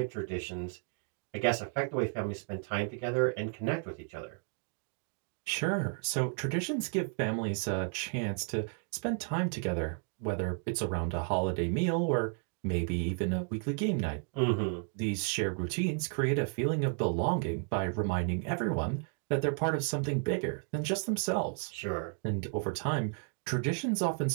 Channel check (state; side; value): quieter; left; 38.5 dB